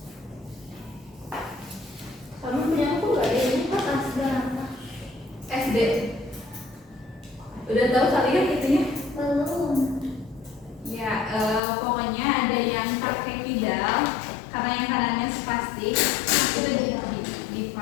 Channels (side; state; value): right; drops out; at 11.6 s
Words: punya aku gak ada ini kok berapa? SD. Udah tahu kalian itunya? Belum. Ya, pokoknya ada yang pakai pedal karena yang kanannya spastik itu di